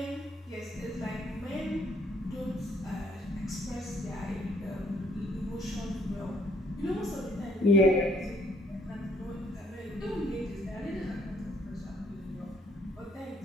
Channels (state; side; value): normal; both; correlation 0.66